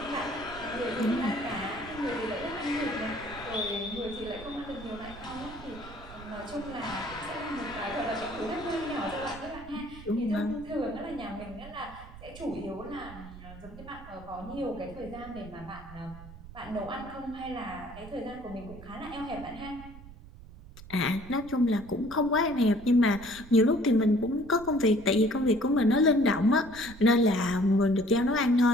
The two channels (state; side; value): noise; right; rumble, 16 dB below the sound